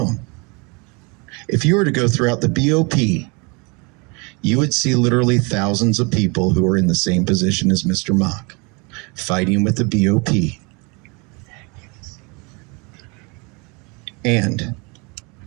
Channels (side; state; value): left; quieter; 29.7 dB